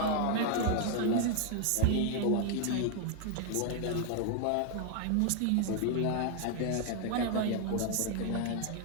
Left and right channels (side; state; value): both; different; correlation 0.00